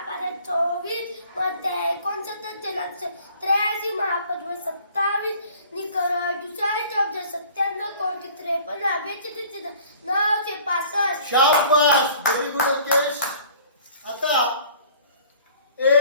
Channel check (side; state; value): both; inverted; correlation -0.51